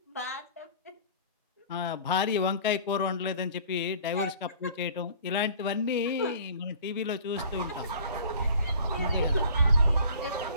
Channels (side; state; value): both; inverted; correlation -0.47